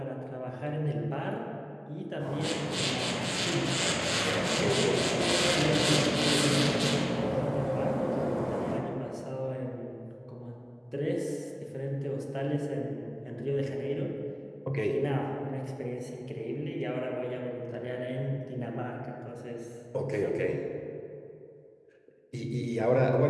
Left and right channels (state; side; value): identical; both; correlation 1.00